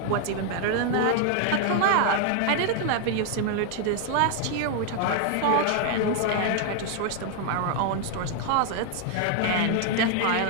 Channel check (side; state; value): both; different; correlation 0.00